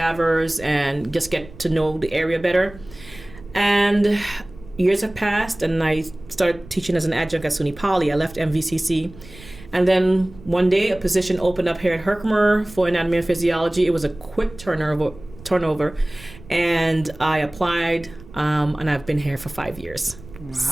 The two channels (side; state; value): right; noise; rumble, 19 dB below the sound